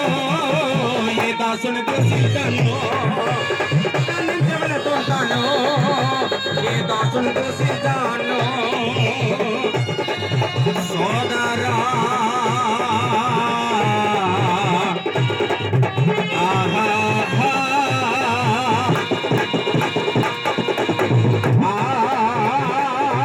ఏ దాసుని దూషించాను, నిదానించి వెళుతుంటాను, ఏ దాసుని దూషించాను. సోదరా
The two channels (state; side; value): identical; both; correlation 1.00